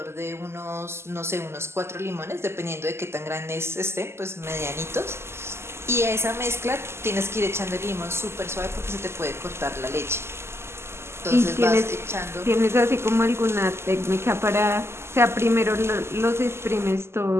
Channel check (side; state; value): left; late; 0.12 ms